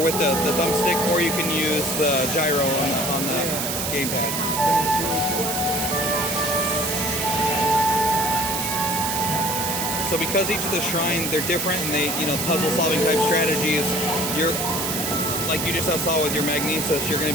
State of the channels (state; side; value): noise; right; hiss, 2 dB below the sound